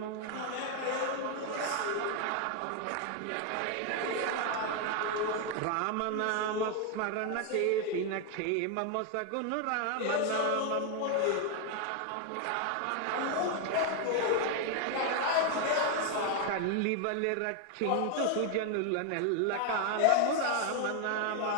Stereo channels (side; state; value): both; different; correlation 0.01